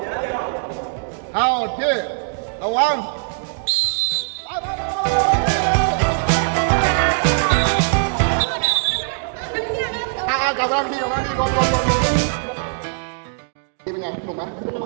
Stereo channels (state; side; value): silent; left; 65 dB below the other